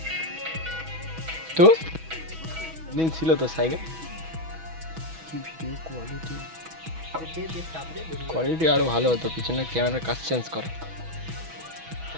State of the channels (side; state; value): left; late; 6.1 ms